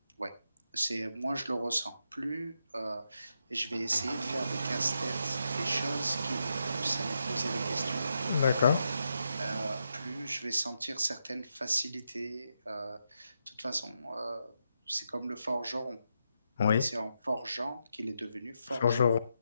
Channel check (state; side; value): inverted; both; correlation -0.83